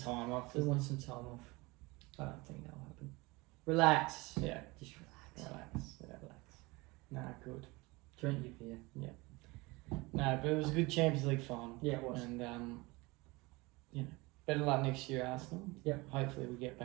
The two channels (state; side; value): quieter; left; 23.7 dB